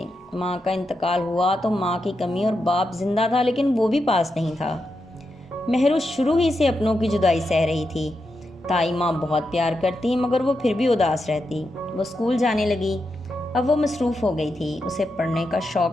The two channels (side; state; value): both; normal; correlation 0.86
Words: माँ का इंतकाल हुआ तो माँ की कमी और बाप जिंदा था, लेकिन वो भी पास नहीं था। मेहरू शुरू ही से अपनों की जुदाई सह रही थी। ताई माँ बहुत प्यार करती, मगर वो फिर भी उदास रहती। वो स्कूल जाने लगी। अब वो मसरूफ़ हो गई थी, उसे पढ़ने का शौक़